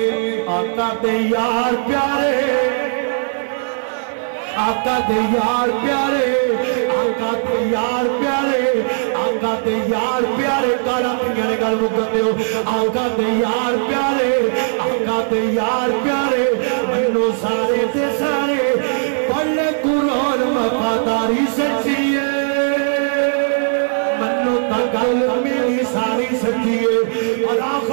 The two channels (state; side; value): silent; left; 61 dB below the other